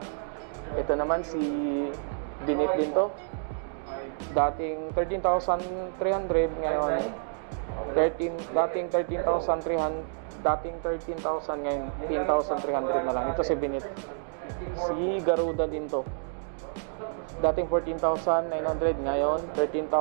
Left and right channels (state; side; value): silent; left; digital silence